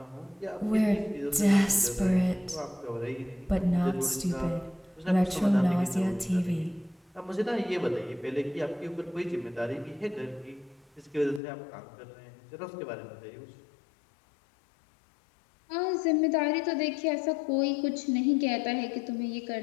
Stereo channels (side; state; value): right; drops out; at 11.4 s